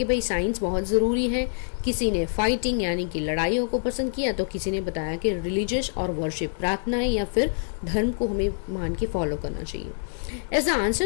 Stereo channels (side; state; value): right; silent; digital silence